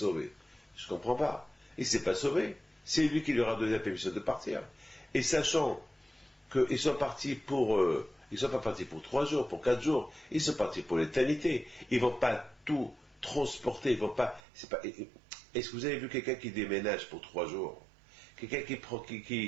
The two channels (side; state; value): left; drops out; at 14.4 s